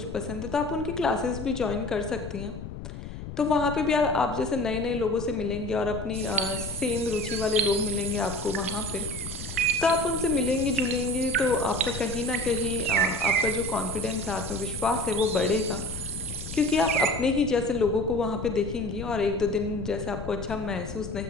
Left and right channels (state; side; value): noise; left; rumble, 9 dB below the sound